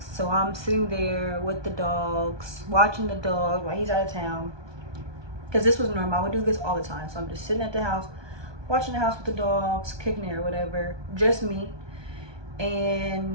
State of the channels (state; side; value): late; left; 1.2 ms